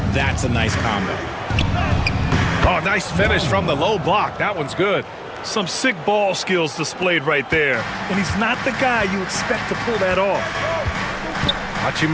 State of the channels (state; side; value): identical; both; correlation 1.00